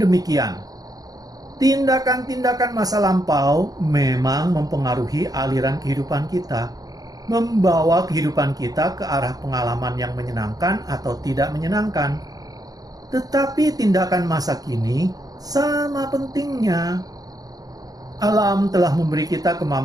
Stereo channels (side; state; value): left; late; 0.18 ms